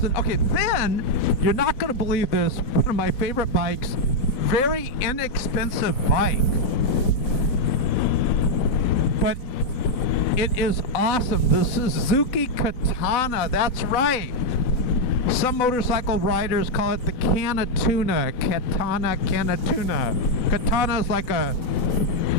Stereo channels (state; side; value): late; right; 4.0 ms